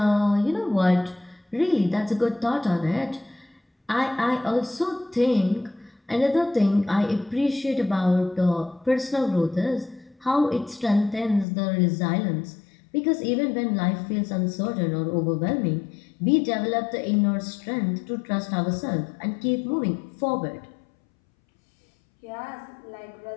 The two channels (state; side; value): drops out; right; at 11.5 s